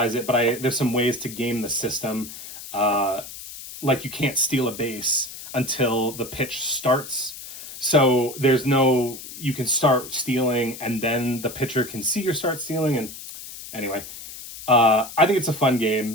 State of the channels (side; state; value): left; noise; hiss, 13 dB below the sound